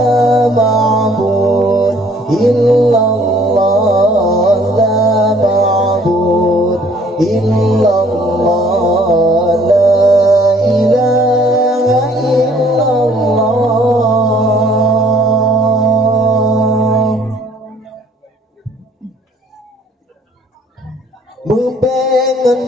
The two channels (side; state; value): both; normal; correlation 0.59